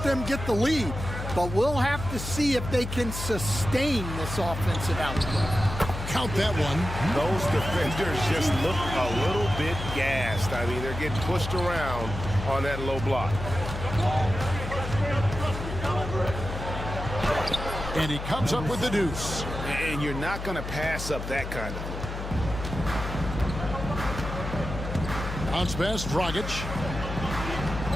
them get the lead. But we'll have to see if they can sustain this offensive output. Count that one. Those defenders just look a little bit gassed. I mean, they're getting pushed around on that low block. And he comes up with the deuce. And you're not going to pass up that kind of thing. Bounce pass, Dragic.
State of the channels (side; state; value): left; noise; hum, 7 dB below the sound